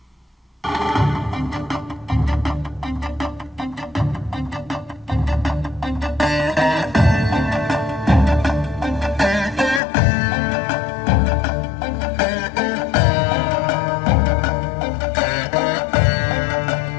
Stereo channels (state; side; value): drops out; right; at 9.8 s